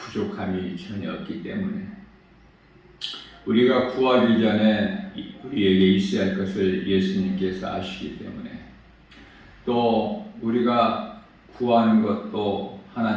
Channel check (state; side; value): identical; both; correlation 1.00